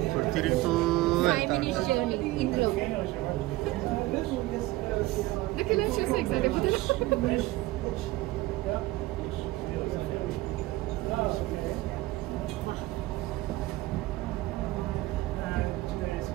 తిరుగుతూ 5 minutes జర్నీ ఇందులో. నాకు ఇలా చూసి ఎక్సైట్ అయిపోతుంది.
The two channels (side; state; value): left; quieter; 18.7 dB